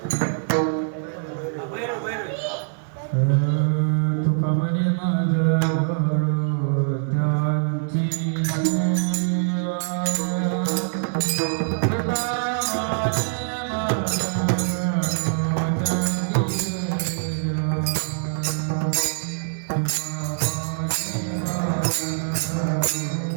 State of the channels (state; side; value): silent; left; 63 dB below the other